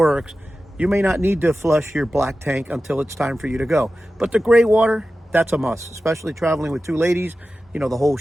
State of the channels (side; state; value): both; normal; correlation 0.94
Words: you may not need to flush your black tank until it's time for you to go. But the gray water, that's a must, especially traveling with 2 ladies, you know, the whole